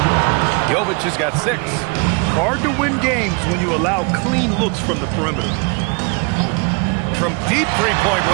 Jovic has got 6. Hard to win games when you allow clean looks from the perimeter. From deep 3-point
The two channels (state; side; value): quieter; left; 32.2 dB